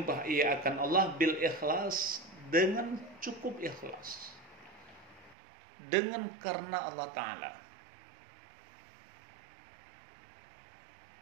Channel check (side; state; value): left; drops out; at 5.4 s